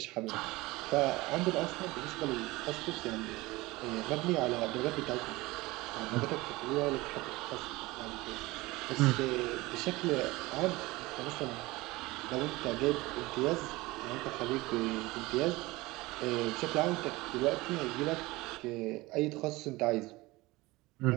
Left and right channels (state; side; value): quieter; left; 20.9 dB